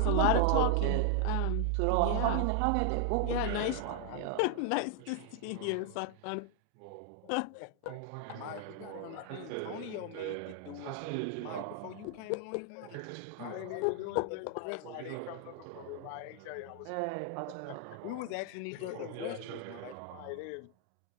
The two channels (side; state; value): both; different; correlation 0.00